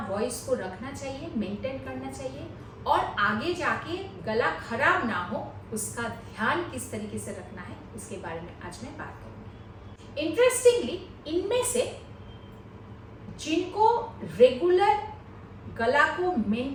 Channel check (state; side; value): identical; both; correlation 1.00